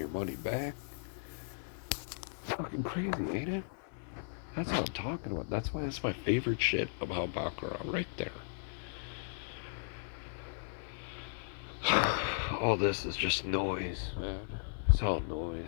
money back. Fucking crazy, ain't it? That's what I'm talking about. That's why it's my favorite shit about Baccarat right there. All this is just noise, man. It's all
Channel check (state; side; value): silent; right; 54 dB below the other